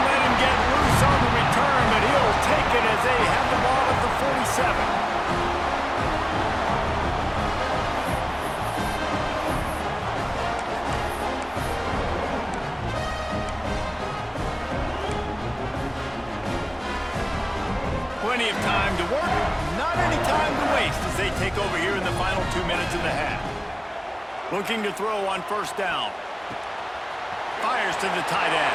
let him get loose on the return, but he'll take it as they have the ball at the 47. Plenty of time to work, not any time to waste as they take over here in the final 2 minutes of the half. Looking to throw on 1st down. Fires to the tight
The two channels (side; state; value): both; identical; correlation 1.00